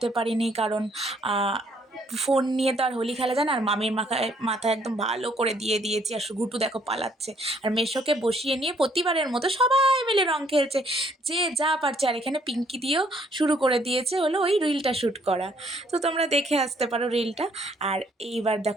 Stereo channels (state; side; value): normal; both; correlation 0.65